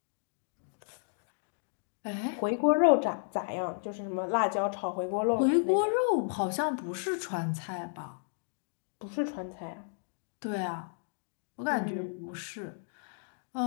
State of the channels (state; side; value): silent; right; digital silence